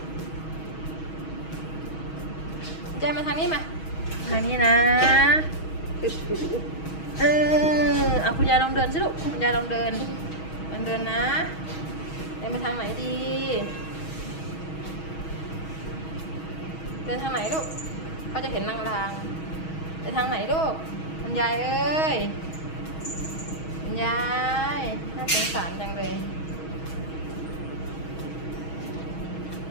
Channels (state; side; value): late; right; 6.3 ms